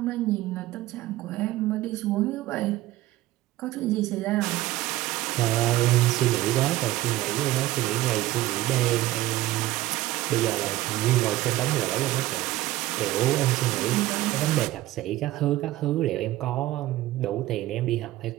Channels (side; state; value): left; quieter; 16.3 dB